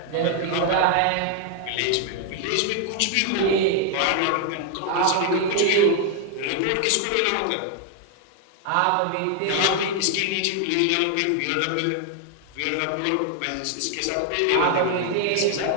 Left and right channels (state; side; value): different; both; correlation 0.00